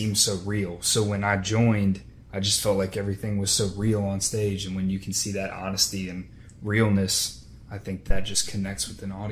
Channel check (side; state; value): both; identical; correlation 1.00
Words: so real. So when I joined, I just felt like everything was so real on stage, and when you can see that honesty and realness, I think that just connects with an